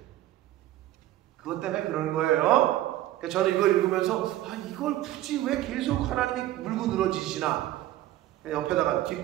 그것 때문에 그런 거예요. 그러니까 저는 이걸 읽으면서 이걸 굳이 왜 계속 하나님이 물고 늘어지시나. 옆에다가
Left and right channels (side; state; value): left; quieter; 14.5 dB